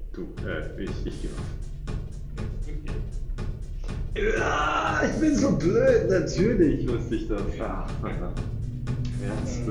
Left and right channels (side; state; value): both; identical; correlation 1.00